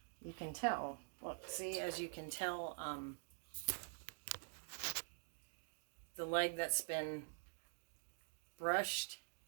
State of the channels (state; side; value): silent; left; digital silence